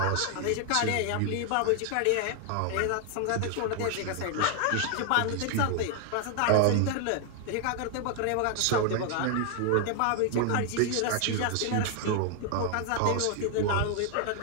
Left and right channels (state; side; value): different; both; correlation 0.00